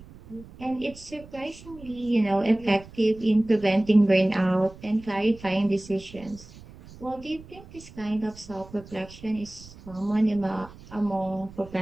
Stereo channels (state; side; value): noise; right; rumble, 19 dB below the sound